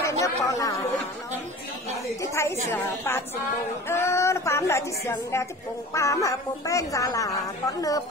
nhớ bỏ là chứ thấy sữa bát xung bùng nó bám lại chứ sườn đeo chứ bùng bám mà bùng bên ra là con nơ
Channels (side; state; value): both; normal; correlation 0.39